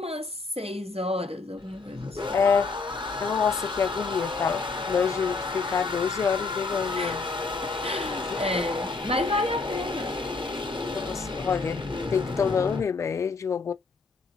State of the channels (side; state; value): right; quieter; 4.3 dB